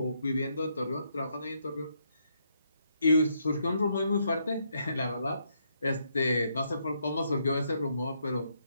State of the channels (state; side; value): inverted; both; correlation -0.76